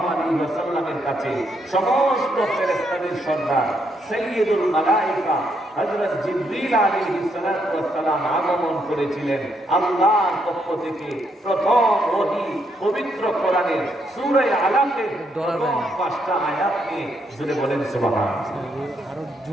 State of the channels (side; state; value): both; normal; correlation 0.76